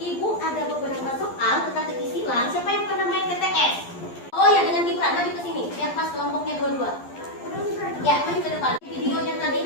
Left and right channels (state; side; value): late; right; 11 ms